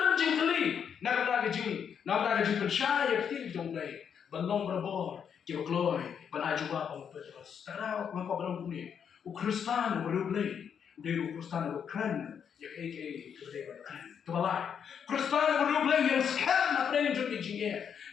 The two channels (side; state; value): right; quieter; 7.6 dB